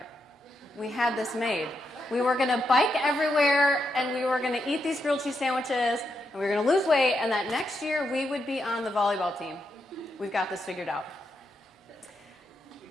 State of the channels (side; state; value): both; normal; correlation 0.83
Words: We had this made. We were going to bike everywhere, and we were going to eat these grilled cheese sandwiches, and we were going to lose weight, and that next year we would be on the volleyball team. We've got this figured out.